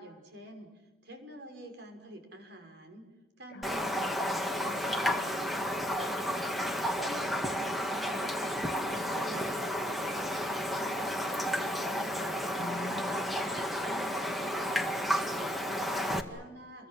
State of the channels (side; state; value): both; normal; correlation 0.70